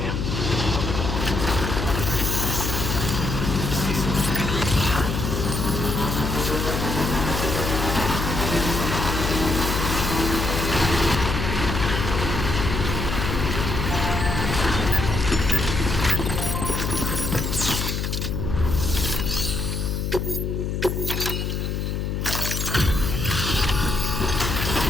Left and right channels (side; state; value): left; noise; hum, 2 dB below the sound